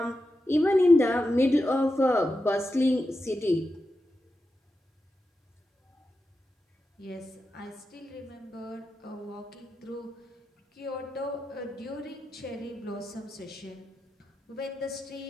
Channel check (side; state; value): both; normal; correlation 0.89